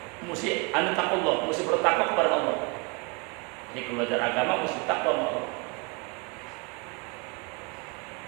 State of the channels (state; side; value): quieter; left; 29.8 dB